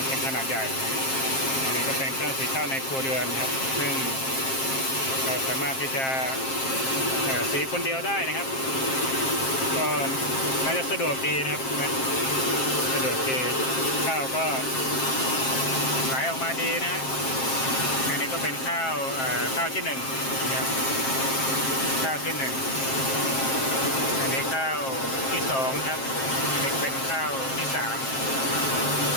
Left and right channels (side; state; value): right; late; 7.5 ms